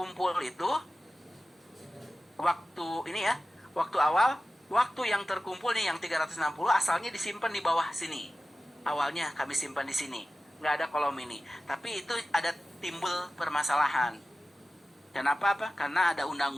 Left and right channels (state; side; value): normal; both; correlation 0.95